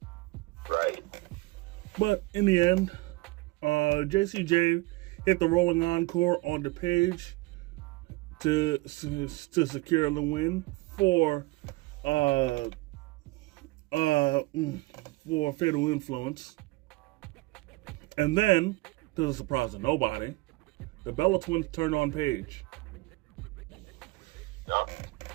Right. But in the end, JCJ hit the rolling encore on the Paige to secure the win for Fatal Influence. And then, to the surprise of nobody, the Bella Twins turned on Paige. Yep.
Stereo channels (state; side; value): quieter; left; 22.1 dB